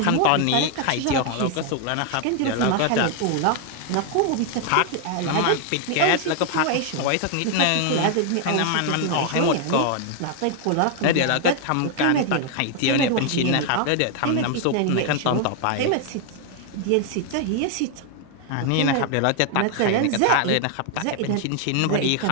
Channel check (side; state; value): both; different; correlation 0.00